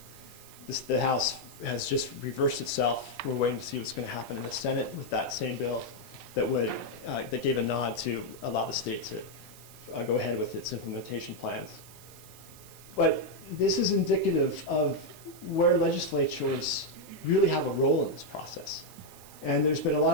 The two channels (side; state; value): right; noise; hiss, 20 dB below the sound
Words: The House has just reversed itself. We're waiting to see what's going to happen in the Senate with that same bill that gave a nod to allow the state to go ahead with its implementation plans. But this is indicative of where legislatures really have a role in this process. And there's been a